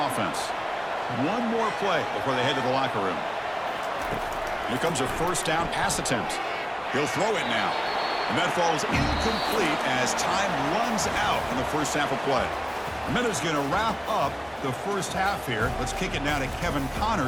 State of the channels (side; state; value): both; identical; correlation 1.00